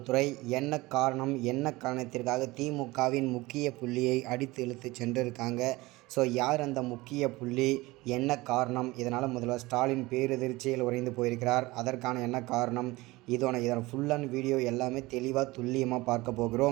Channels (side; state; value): left; quieter; 20.8 dB